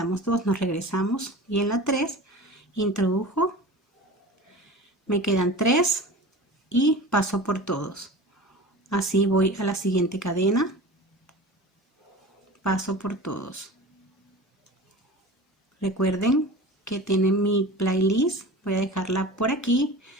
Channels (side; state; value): both; normal; correlation 0.35